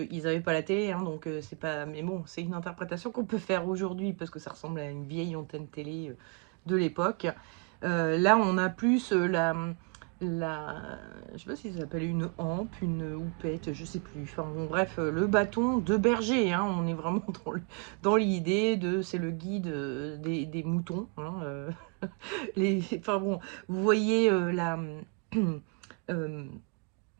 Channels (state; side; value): quieter; left; 34.2 dB